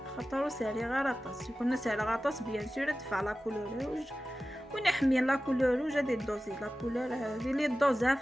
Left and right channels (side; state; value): both; normal; correlation 0.95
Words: خاطر سالي غير طاس يكون سالي غطاس بيان سور دفع لا كولور روج ونحمي لا كولور روج هادي دوزي لا كولور هذه لي دوزات